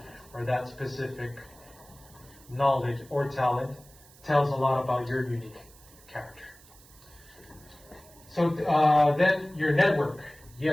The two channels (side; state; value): right; noise; hiss, 24 dB below the sound